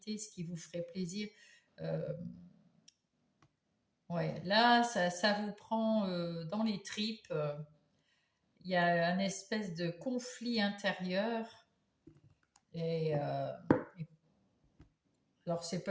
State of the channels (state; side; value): identical; both; correlation 1.00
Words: ce qui vous ferait plaisir. Euh, ouais, là, ça vous prend dans les tripes. Il y a un espèce de conflit intérieur. Et, alors, c'est